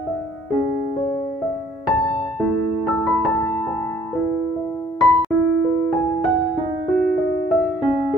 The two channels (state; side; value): normal; both; correlation 0.59